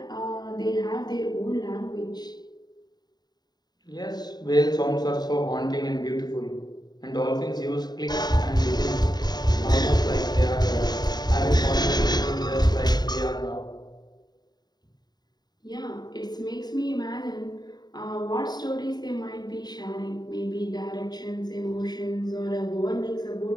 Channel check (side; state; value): right; late; 0.20 ms